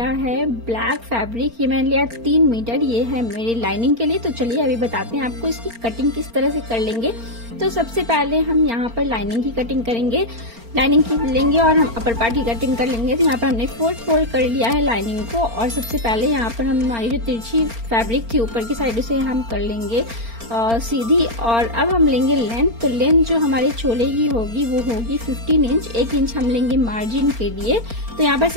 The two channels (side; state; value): left; late; 4.4 ms